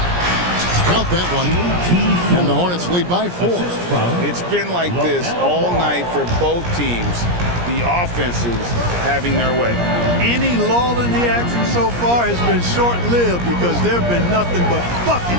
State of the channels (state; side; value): late; left; 17 ms